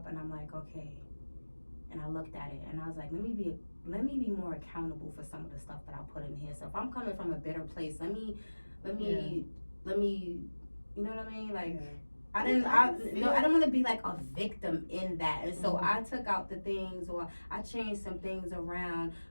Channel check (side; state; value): both; inverted; correlation -1.00